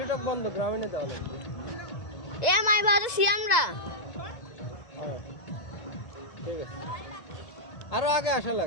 বন্ধ, গ্রামীণে দেওয়া লাগবে। এ মাই বাজে আমরা। হ্যাঁ ঠিক আছে, আরো আগে আসা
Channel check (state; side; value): late; right; 2.0 ms